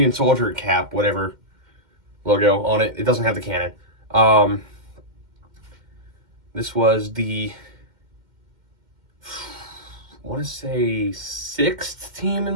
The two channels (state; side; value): late; left; 2.1 ms